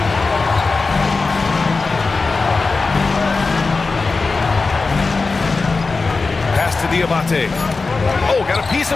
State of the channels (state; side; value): quieter; right; 4.0 dB